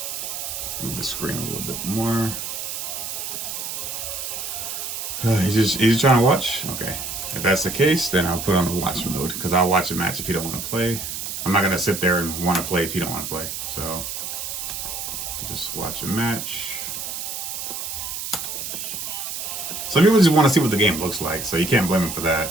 Move the screen a little bit more. He's just trying to watch? Okay. If that's the case, then I'll put on the watch mode, because I'll watch a match if you don't want to play. I'm not going to sit there and want to play if you don't want to play. So, just watch a match. Some people just want to see what the game looks like, so you can't blame them for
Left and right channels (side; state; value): right; noise; hiss, 5 dB below the sound